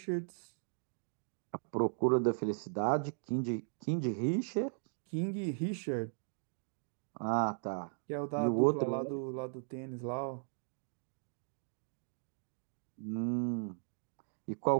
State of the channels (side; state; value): left; silent; digital silence